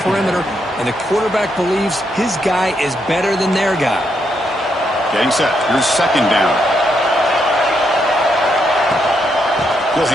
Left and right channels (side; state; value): both; normal; correlation 0.79